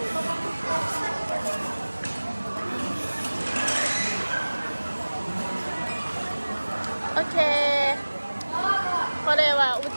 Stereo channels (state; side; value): inverted; both; correlation -1.00